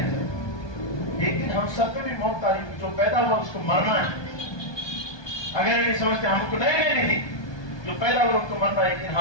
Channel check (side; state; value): right; late; 1.2 ms